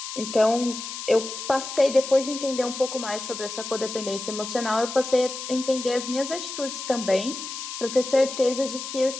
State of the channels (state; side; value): noise; left; hiss, 8 dB below the sound